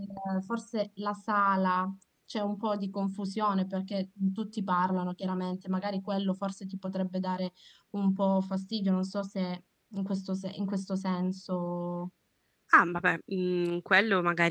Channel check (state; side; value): identical; both; correlation 1.00